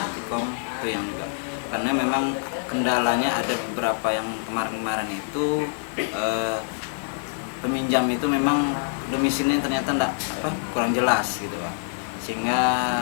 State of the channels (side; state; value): right; silent; 62 dB below the other